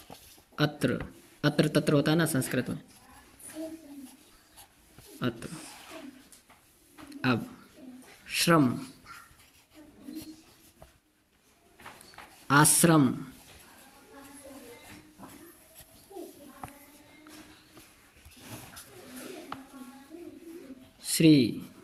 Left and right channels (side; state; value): both; identical; correlation 1.00